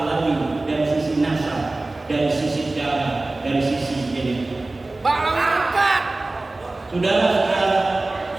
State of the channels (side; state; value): left; quieter; 3.0 dB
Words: dari sisi nasab, dari sisi darah, dari sisi genetik. Bahlawi angkat. Saudara-saudara,